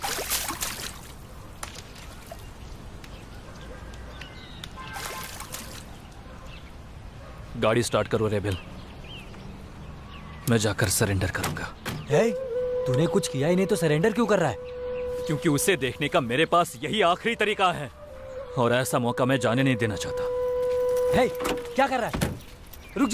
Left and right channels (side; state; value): both; identical; correlation 1.00